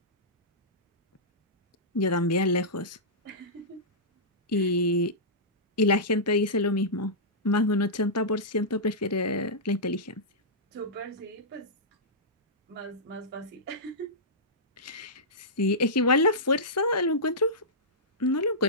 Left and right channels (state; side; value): normal; both; correlation -0.14